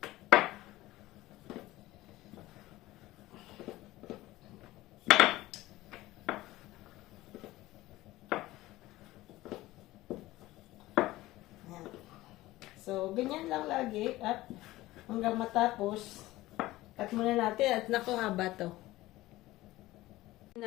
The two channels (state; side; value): quieter; right; 17.5 dB